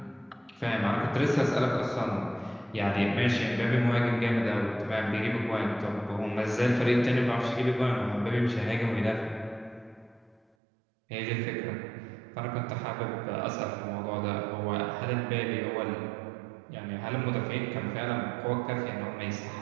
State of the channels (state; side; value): drops out; left; at 10.4 s